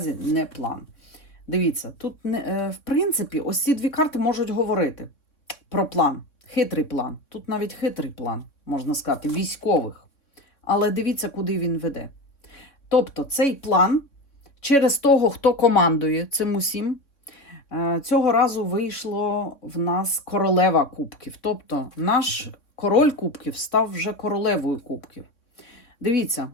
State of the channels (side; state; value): right; late; 3.6 ms